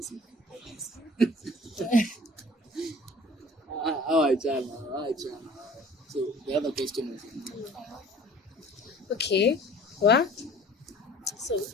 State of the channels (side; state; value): both; normal; correlation 0.48